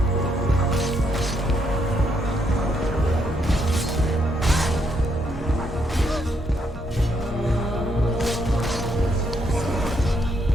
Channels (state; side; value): normal; both; correlation 0.75